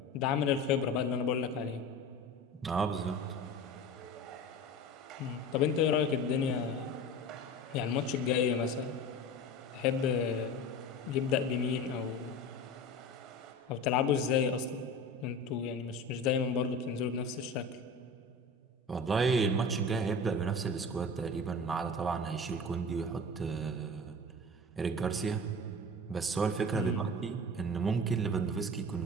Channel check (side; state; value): both; normal; correlation 0.34